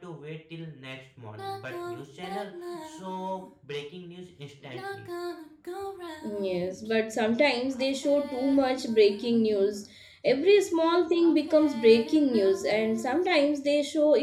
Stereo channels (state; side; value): identical; both; correlation 1.00